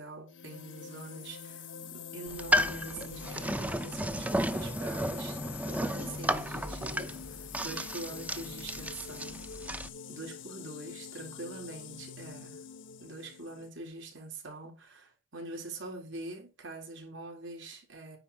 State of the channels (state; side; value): normal; both; correlation 0.50